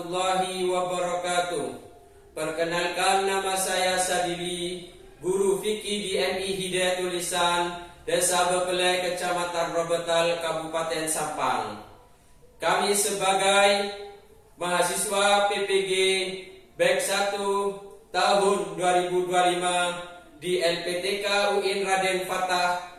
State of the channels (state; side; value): identical; both; correlation 1.00